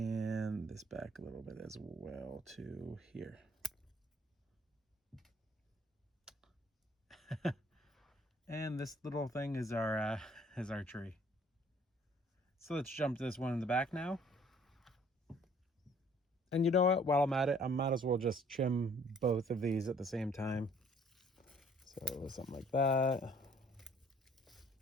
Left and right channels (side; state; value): both; normal; correlation 0.59